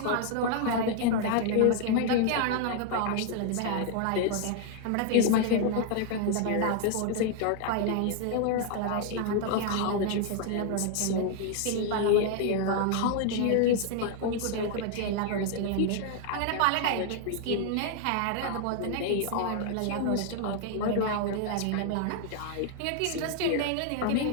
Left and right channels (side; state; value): both; different; correlation 0.00